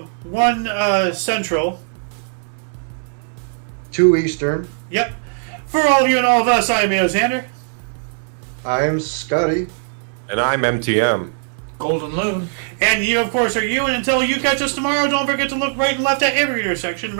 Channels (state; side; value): silent; left; 66 dB below the other